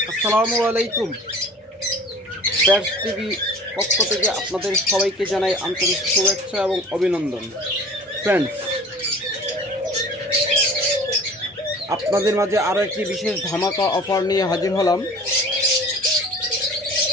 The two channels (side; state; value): both; normal; correlation 0.44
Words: আসসালামু আলাইকুম। Pants TV পক্ষ থেকে আপনাদের সবাইকে জানাই আন্তরিক শুভেচ্ছা এবং অভিনন্দন। ফ্রেন্ডস, আপনাদের মাঝে আরও একটি বিশেষ ধামাকা অফার নিয়ে হাজির হলাম।